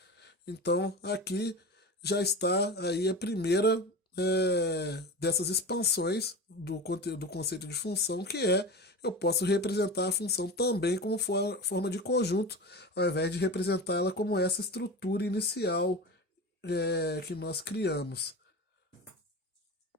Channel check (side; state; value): both; normal; correlation 0.29